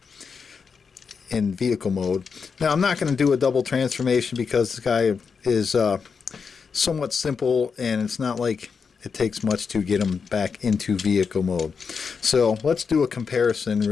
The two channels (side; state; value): right; quieter; 5.7 dB